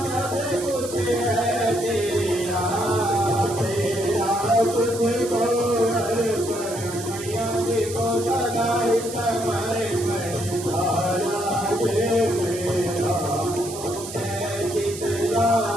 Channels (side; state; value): right; noise; hiss, 11 dB below the sound